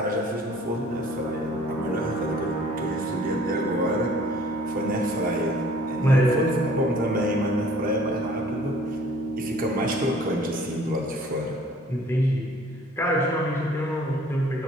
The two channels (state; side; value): normal; both; correlation 0.54